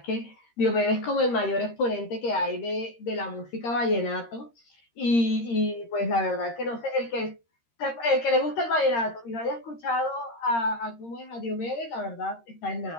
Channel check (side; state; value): right; late; 13 ms